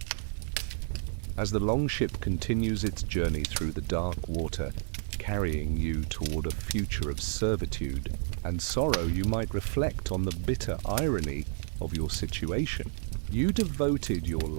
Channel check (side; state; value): left; silent; 57 dB below the other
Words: As the longship continues its journey through the dark water, carrying you toward a future of servitude and sorrow, you might reflect on the bitter irony of your situation. You devoted your